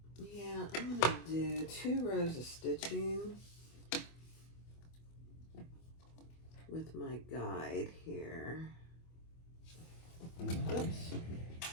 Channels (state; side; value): late; right; 25 ms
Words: yeah, I'm going to do 2 rows of stitching with my guide here. Oops,